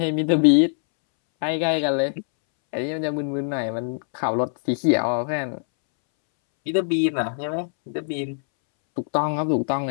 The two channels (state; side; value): silent; right; 63 dB below the other